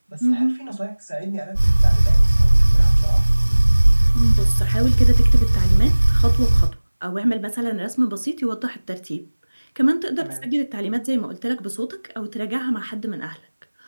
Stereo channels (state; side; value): inverted; both; correlation -1.00